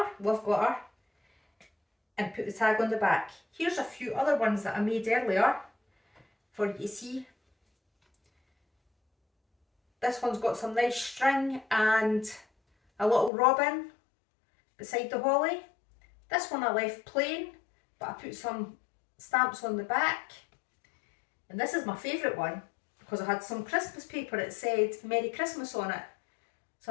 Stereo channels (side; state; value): right; drops out; at 13.3 s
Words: love glitter, and put the tag on the back. Here's a few other ones that I made earlier for you to see. This one's got some nice string and a little robin beside the holly. This one I left plain, but I put some stamps on the back. And this is my favourite one because I had some Christmas paper that said Merry Christmas on it. So